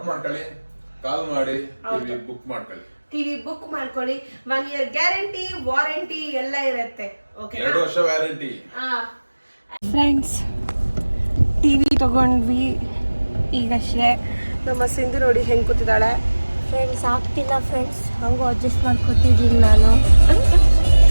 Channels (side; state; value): both; inverted; correlation -1.00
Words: ಮಾಡ್ಕೊಳ್ಳಿ, ಕಾಲ್ ಮಾಡಿ ಬುಕ್ ಮಾಡ್ಕೊಳ್ಳಿ. ಟಿವಿ ಬುಕ್ ಮಾಡ್ಕೊಳ್ಳಿ. 1 year ಗ್ಯಾರಂಟಿ, ವಾರಂಟಿ ಎಲ್ಲ ಇರುತ್ತೆ. ಓಕೆ, 2 ವರ್ಷ ವ್ಯಾರಂಟಿ. ಫ್ರೆಂಡ್ಸ್ ಟಿವಿ ತಗೊಂಡ್ವಿ ಈಗಷ್ಟೇ. ನಮ್ಮ ಸಿಂಧು ನೋಡಿ ಹೆಂಗ್ ಕೂತಿದ್ದಾಳೆ. ಫ್ರೆಂಡ್ಸ್ ಆಗ್ತಿಲ್ಲ ಫ್ರೆಂಡ್ಸ್, ಹಂಗೂ ಅಡ್ಜಸ್ಟ್ ಮಾಡ್ಕೊತಿದ್ದೀನಿ ನಾನು.